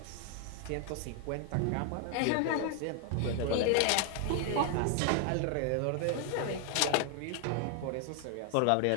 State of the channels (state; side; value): different; both; correlation 0.00